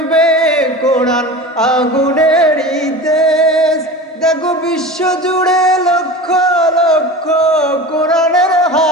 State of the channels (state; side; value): normal; both; correlation 0.32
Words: কোরআন আগুনের দেশ। দেখো বিশ্ব জুড়ে লক্ষ লক্ষ কোরআনের